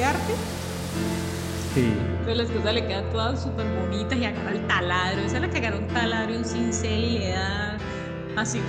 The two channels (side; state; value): both; identical; correlation 1.00